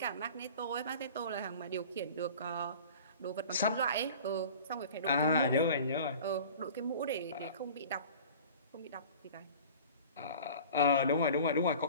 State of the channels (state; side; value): inverted; both; correlation -0.42